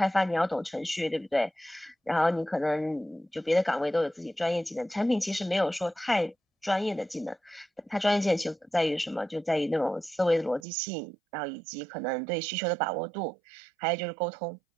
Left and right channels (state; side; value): drops out; left; at 10.7 s